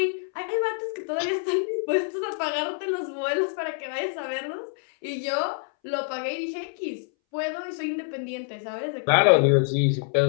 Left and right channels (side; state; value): right; silent; 61 dB below the other